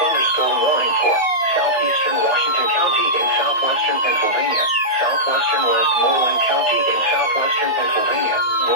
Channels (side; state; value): right; late; 2.1 ms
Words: thunderstorm warning for southeastern Washington County in southwestern Pennsylvania, southwestern Westmoreland County in southwestern Pennsylvania,